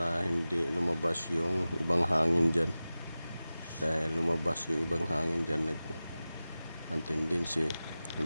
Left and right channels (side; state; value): both; inverted; correlation -0.95